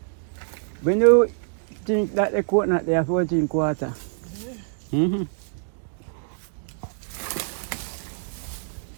When you drink that the coconut, they have to drink water. Mm-hmm.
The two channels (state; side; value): silent; left; digital silence